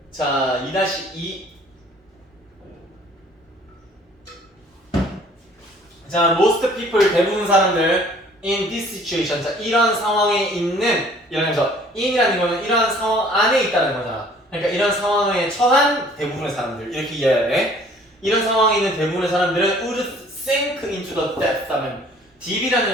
자, 2-2. 자, most people, 대부분 사람들 in this situation, 자, 이런 상황에 있는, 이러면서 in이라는 거는 이런 상황 안에 있다는 거잖아. 그러니까 이런 상황에 처한 대부분의 사람들 이렇게 이해해야 돼. 이런 상황에 있는 대부분의 사람들은 would sink into the depth 하면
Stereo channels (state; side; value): normal; both; correlation 0.55